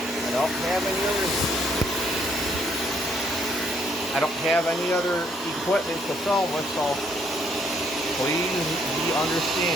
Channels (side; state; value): both; normal; correlation 0.69